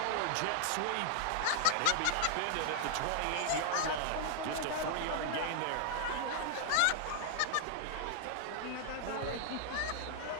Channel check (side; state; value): both; different; correlation 0.00